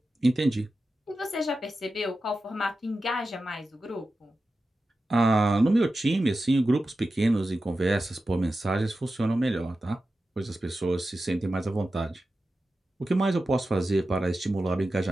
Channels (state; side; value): normal; both; correlation 0.92